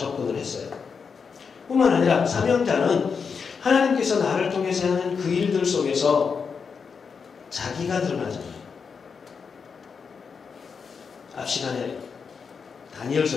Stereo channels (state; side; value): quieter; right; 5.8 dB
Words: 했어요. 뿐만 아니라 사명자는 하나님께서 나를 통해서 하는 그 일들 속에서 자기가 드러나잖아요. 앞 시간에 다니엘서